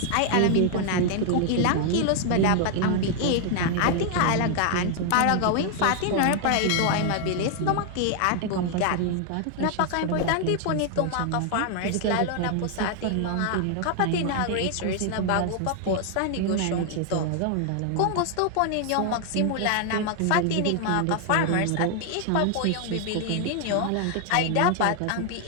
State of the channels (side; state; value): both; different; correlation 0.00